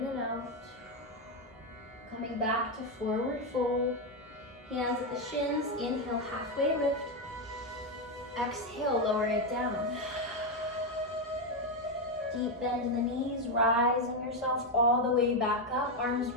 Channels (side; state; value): both; normal; correlation 0.06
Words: and out. Coming back to forward fold. Hands at the shins, inhale, halfway lift. Exhale, lower it down. Deep bend in the knees, rising yourself all the way back up. Arms